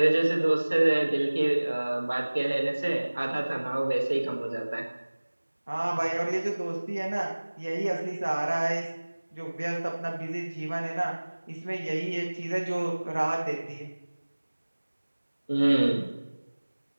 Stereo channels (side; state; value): both; inverted; correlation -1.00